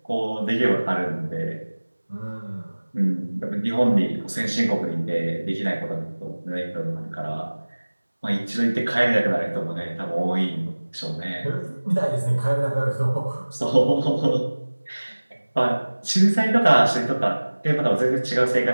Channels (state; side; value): inverted; both; correlation -1.00